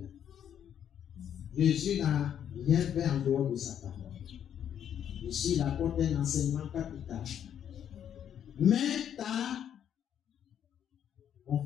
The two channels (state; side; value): quieter; right; 9.4 dB